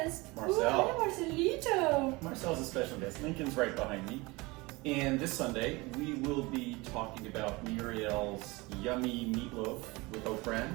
Marcel. Hey, Marcelito. Marcel's a special guest. Lincoln's right behind me. And this Sunday, we will be talking about Muriel's yummy meatloaf with oat bran,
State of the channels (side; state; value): left; quieter; 23.8 dB